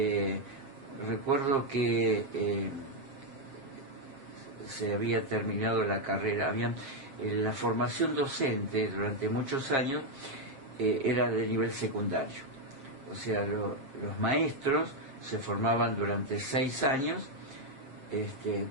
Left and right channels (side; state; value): left; late; 7.4 ms